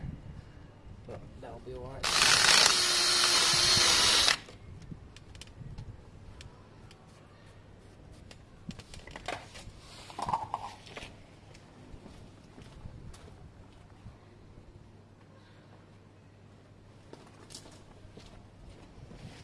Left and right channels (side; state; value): both; identical; correlation 1.00